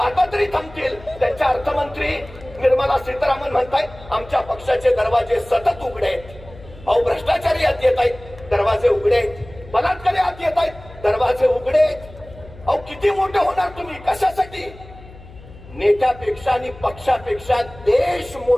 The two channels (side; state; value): left; noise; hum, 19 dB below the sound